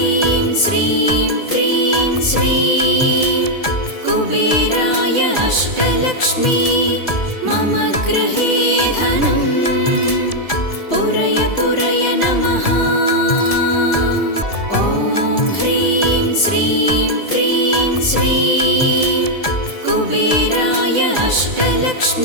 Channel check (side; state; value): right; late; 1.7 ms